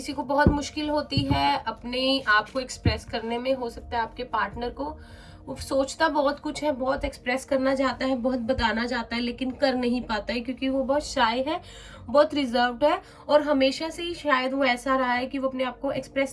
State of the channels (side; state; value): both; identical; correlation 1.00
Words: को बहुत मुश्किल होती है अपने आप को एक्सप्रेस करने में। हो सकता है आपके पार्टनर को, वो सोचता बहुत कुछ है, बहुत एक्सप्रेस करना चाहता है, बहुत बताना चाहता है, लेकिन कर नहीं पाता है क्योंकि वो बहुत शाय है, बहुत रिजर्व्ड है, और हमेशा से ही शायद वो ऐसा रहा है कि वो अपने आप को